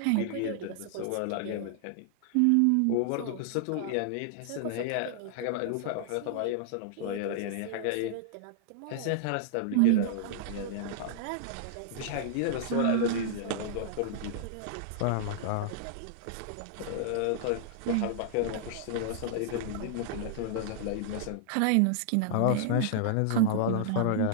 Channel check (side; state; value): both; different; correlation -0.01